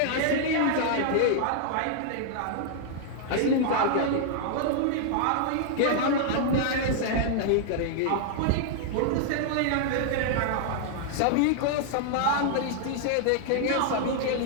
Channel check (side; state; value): both; different; correlation -0.01